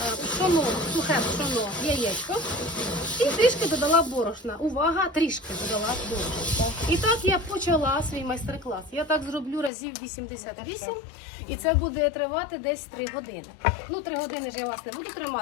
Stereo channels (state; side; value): drops out; right; at 9.7 s